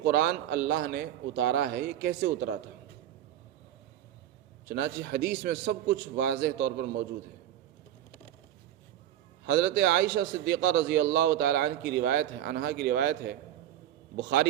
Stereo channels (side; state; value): left; quieter; 11.8 dB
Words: قرآن اللہ نے اتارا ہے یہ کیسے اترا تھا۔ چنانچہ حدیث میں سب کچھ واضح طور پر موجود ہے۔ حضرت عائشہ صدیقہ رضی اللہ تعالیٰ عنہا کی روایت ہے